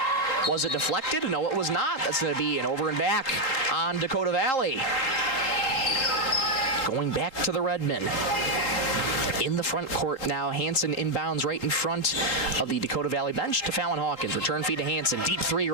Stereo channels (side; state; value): right; late; 3.7 ms